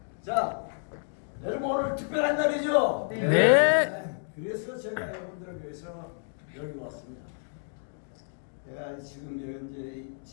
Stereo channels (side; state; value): right; silent; digital silence